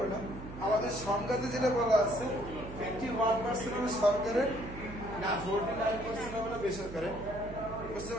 না, আমাদের সংজ্ঞাতে যেটা বলা আছে 51% হলো সরকারের, না 49% হলো বেসরকারের, বুঝতে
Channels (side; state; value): right; noise; hum, 11 dB below the sound